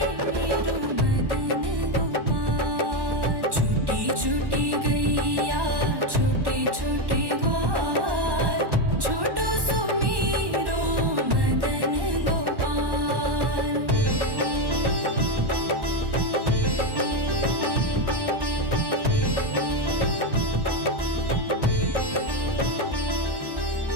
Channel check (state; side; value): late; left; 1.1 ms